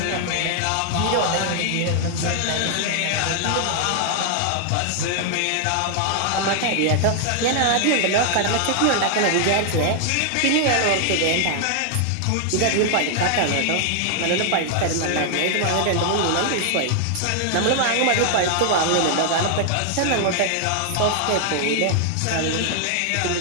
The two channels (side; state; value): both; different; correlation 0.00